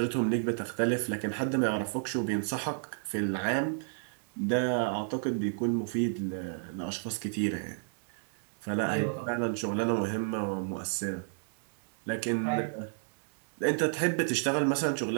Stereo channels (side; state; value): left; silent; digital silence